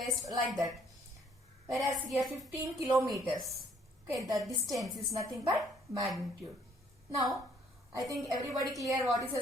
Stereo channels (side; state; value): both; normal; correlation 0.64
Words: like that. Whereas here 15 kilometers. Okay, the distance is nothing but magnitude. Now, I think everybody clear what is a